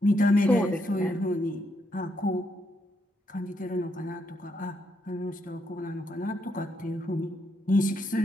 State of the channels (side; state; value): both; normal; correlation 0.78